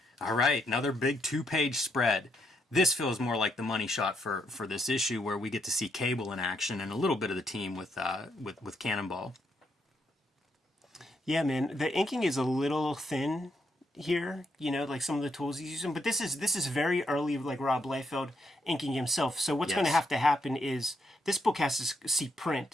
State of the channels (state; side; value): normal; both; correlation 0.77